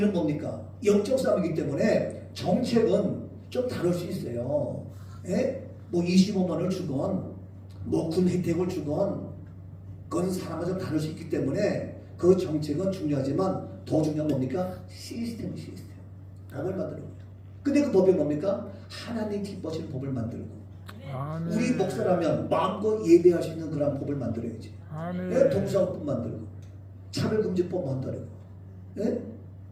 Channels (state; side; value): identical; both; correlation 1.00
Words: 뭡니까? 영적 싸움이기 때문에 정책은 좀 다를 수 있어요. 예? 뭐 25만 원을 주건 뭐 군 혜택을 주건 그건 사람마다 좀 다를 수 있기 때문에 그 정책은 중요하지만 더 중요한 뭡니까? 시스템. 법을 만드는 거예요. 근데 그 법이 뭡니까? 하나님 기뻐하시는 법을 만들고 아멘. 우리 목사라면 마음껏 예배할 수 있는 그런 법을 만들어야지. 아멘. 예? 동사법 만들고 차별금지법 만들고 예?